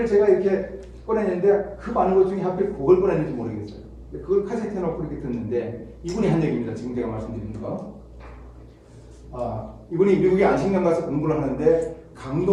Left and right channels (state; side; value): identical; both; correlation 1.00